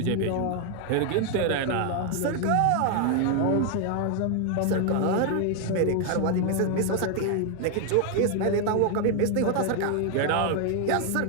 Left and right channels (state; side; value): different; both; correlation 0.00